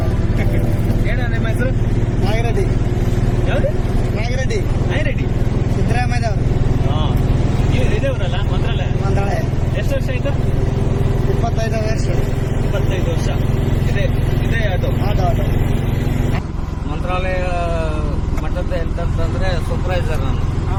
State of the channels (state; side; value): identical; both; correlation 1.00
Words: ಏನ ನಿಮ್ಮ ಹೆಸರು? ನಾಗಿರೆಡ್ಡಿ ಯಾವ್ದು? ನಾಗಿರೆಡ್ಡಿ ನಾಯಿರೆಡ್ಡಿ. ಸಿದ್ದರಾಮಯ್ಯದವರು ಇದೇವ್ರಲ್ಲ ಮಂತ್ರಾಲಯ. ಮಂತ್ರಾಲಯ ಎಷ್ಟು ವರ್ಷ ಆಯ್ತು? 25 ವರ್ಷ 25 ವರ್ಷ. ಇದೇ ಅದು ಆಟೋ ಆಟೋ ಮಂತ್ರಾಲಯ ಮಠದ ಎಂತಂದ್ರೆ ಸೂಪರ್ವೈಸರ್ ನಾನು.